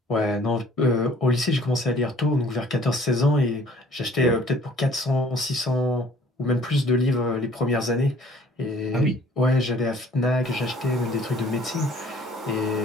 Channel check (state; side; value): normal; both; correlation 0.55